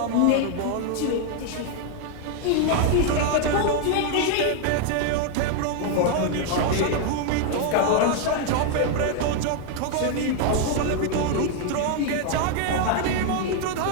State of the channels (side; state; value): both; different; correlation 0.00